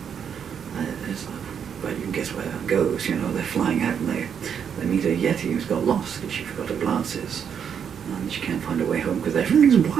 well, you can guess where that goes, you know, they're flying out and they meet a Yeti who's got lost because she forgot her glasses. And she can't find her way home because everything's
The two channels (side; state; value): left; quieter; 7.7 dB